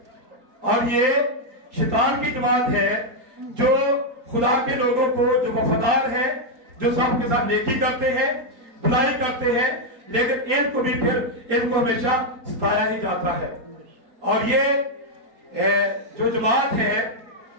اور یہ شیطان کی جماعت ہے جو خدا کے لوگوں کو, جو وفادار ہیں, جو سب کے ساتھ نیکی کرتے ہیں, بھلائی کرتے ہیں, لیکن ان کو بھی پھر ان کو ہمیشہ ستایا ہی جاتا ہے. اور یہ جو جماعت ہے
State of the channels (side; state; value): left; late; 4.3 ms